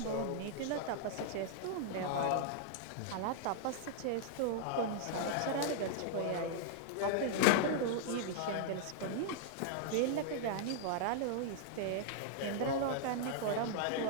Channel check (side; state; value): both; different; correlation -0.01